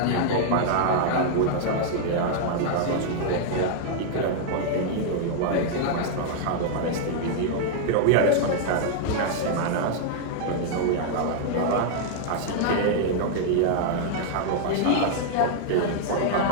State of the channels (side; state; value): both; different; correlation -0.01